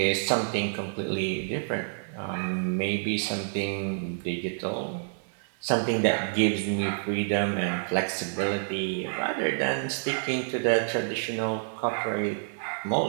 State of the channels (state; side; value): silent; left; 59 dB below the other